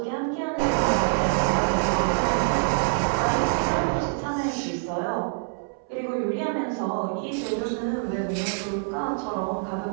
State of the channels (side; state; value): left; silent; 61 dB below the other